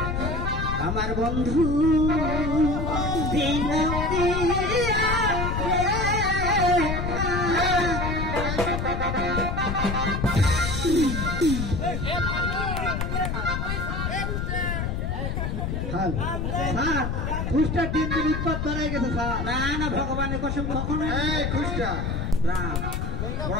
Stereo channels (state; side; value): noise; left; rumble, 2 dB below the sound